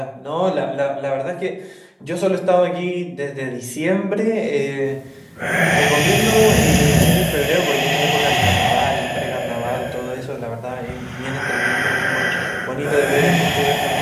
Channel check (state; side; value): identical; both; correlation 1.00